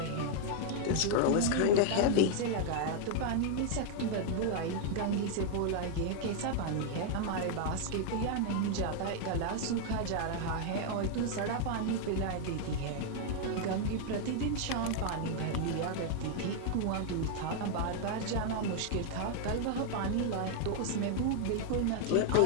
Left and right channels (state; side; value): different; both; correlation 0.00